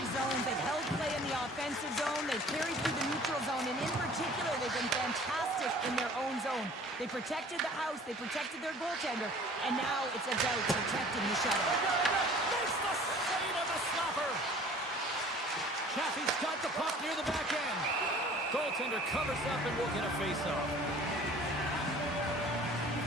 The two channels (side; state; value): both; normal; correlation 0.49